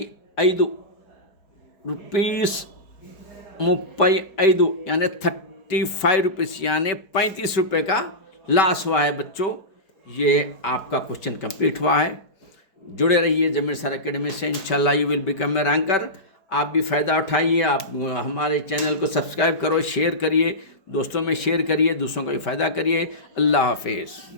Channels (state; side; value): late; right; 4.7 ms